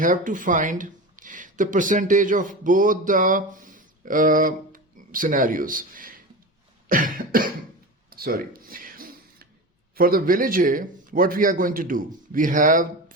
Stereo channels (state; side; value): normal; both; correlation 0.27